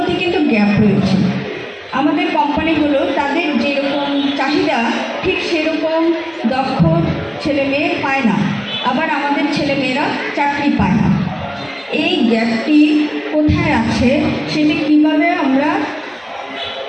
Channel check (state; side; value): identical; both; correlation 1.00